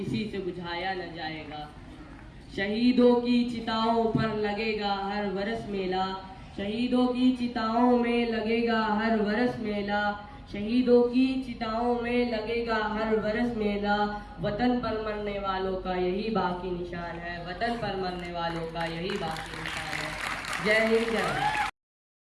से बुझाया न जाएगा। शहीदों की चिताओं पर लगेगा हर बरस मेला, शहीदों की चिताओं में लगेगा हर बरस मेला, शहीदों की चिताओं में लगेगा हर बरस मेला। वतन पर मरने वालों का यही बाकी निशान है, वतन पर मरने वालों का यही बाकी निशान है। जय हिंद, जय भारत।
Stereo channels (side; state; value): both; identical; correlation 1.00